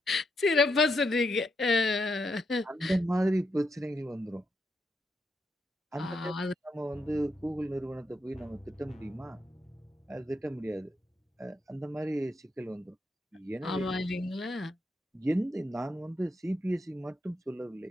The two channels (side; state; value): both; normal; correlation 0.81